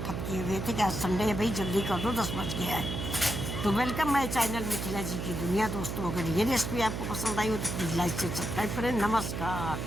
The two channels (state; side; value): noise; right; hum, 4 dB below the sound